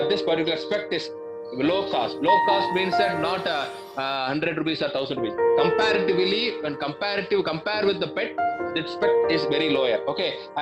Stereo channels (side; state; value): both; identical; correlation 1.00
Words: this particular SPECT is low cost. Low cost means that not 100 rupees or 1000 rupees. Comparatively, when compare with the PET, the SPECT is very lower. Okay,